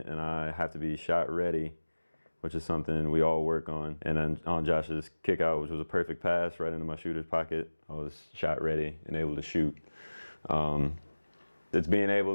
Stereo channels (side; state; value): both; inverted; correlation -1.00